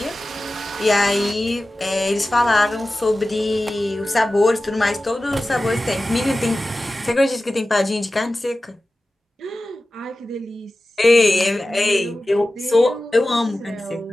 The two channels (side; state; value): both; normal; correlation 0.95